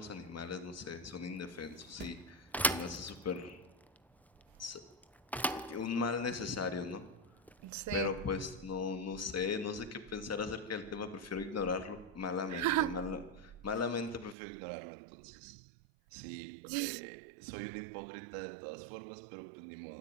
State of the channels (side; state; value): left; drops out; at 14.4 s